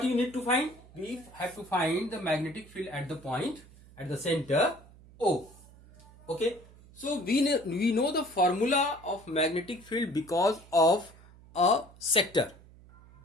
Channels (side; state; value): right; noise; hum, 23 dB below the sound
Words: you need to find? We have to find the magnetic field at the point, at the center O. Okay. So we know the formula of magnetic field because of a sector.